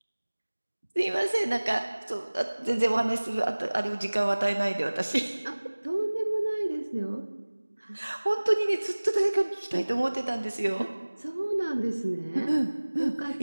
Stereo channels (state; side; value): inverted; both; correlation -1.00